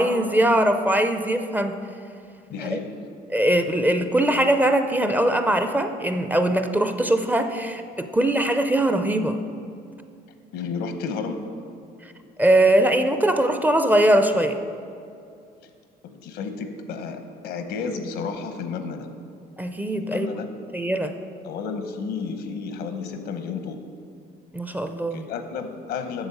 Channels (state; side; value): normal; both; correlation 0.74